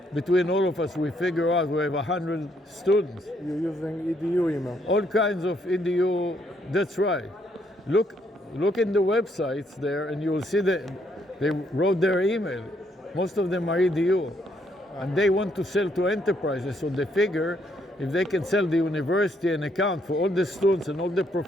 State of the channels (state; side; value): normal; both; correlation 0.72